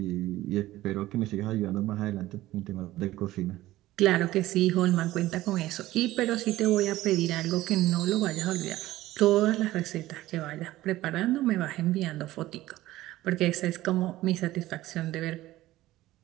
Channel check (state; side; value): quieter; left; 16.2 dB